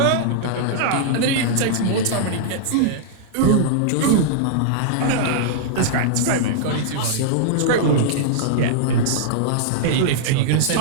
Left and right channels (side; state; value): both; different; correlation -0.02